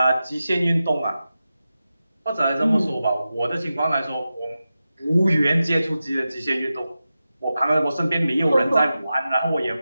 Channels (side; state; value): both; inverted; correlation -0.92